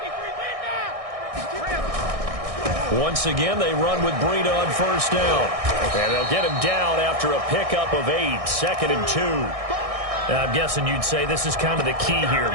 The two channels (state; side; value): late; left; 1.6 ms